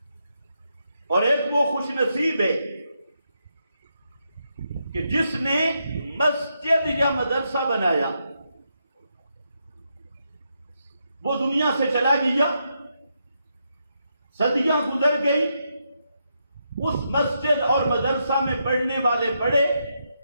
اور ایک وہ خوش نصیب ہے کہ جس نے مسجد یا مدرسہ بنایا، وہ دنیا سے چلا گیا، صدیاں گزر گئی، اس مسجد اور مدرسہ میں پڑھنے والے پڑھے،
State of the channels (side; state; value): both; inverted; correlation -0.82